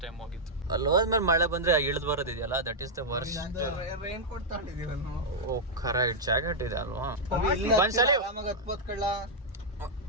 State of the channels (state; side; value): normal; both; correlation -0.06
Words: ಟೈಮ್ ಹೋಗಿತ್ತು. ಅಲ್ಲಿ ಹೋದ್ಮೇಲೆ ಮಳೆ ಬಂದ್ರೆ ಇಳಿದ್ ಬರೋದಿದೆಯಲ್ಲ, that is the worst. Raincoat ತಗೊಂಡಿದೀವಿ ನಾವು. ಓ ಕರೆಕ್ಟ್, ಜಾಕೆಟ್ ಇದೆ ಅಲ್ವಾ.